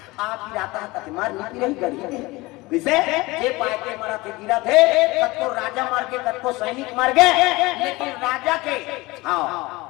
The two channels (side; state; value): right; quieter; 21.8 dB